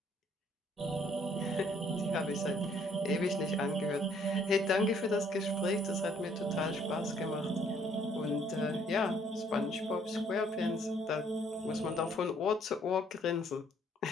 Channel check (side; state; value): both; normal; correlation 0.64